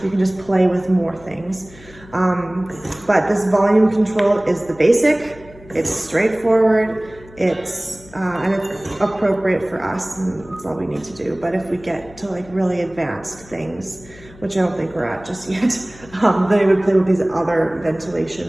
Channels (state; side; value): noise; left; hum, 22 dB below the sound